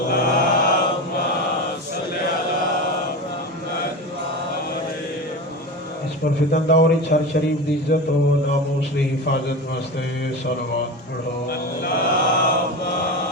اس پر فتن دور ہر شریف دی عزت و ناموس دی حفاظت واسطے صلوات پڑھو۔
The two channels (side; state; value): both; normal; correlation 0.25